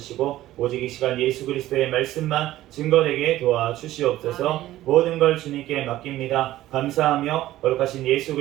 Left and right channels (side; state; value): left; quieter; 14.9 dB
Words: 오직 이 시간 예수 그리스도의 말씀만 증거되게 도와주시옵소서. 모든 걸 주님께 맡깁니다. 감사하며 거룩하신 예수